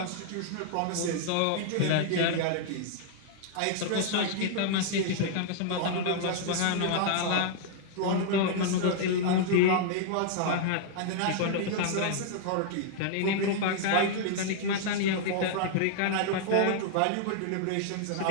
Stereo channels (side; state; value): both; different; correlation -0.01